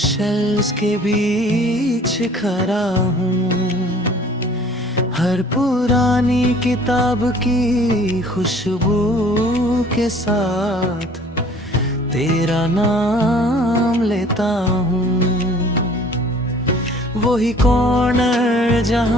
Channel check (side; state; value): both; normal; correlation 0.52